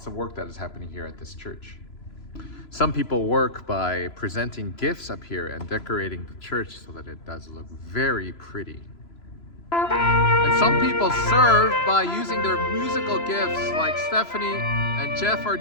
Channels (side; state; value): right; late; 3.0 ms